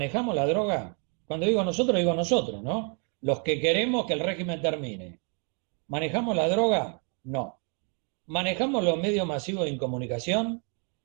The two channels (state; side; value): quieter; left; 38.7 dB